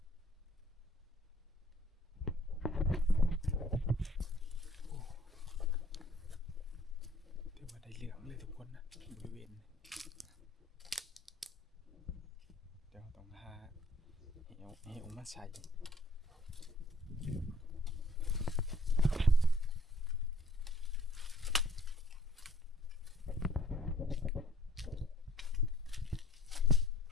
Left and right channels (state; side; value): normal; both; correlation 0.59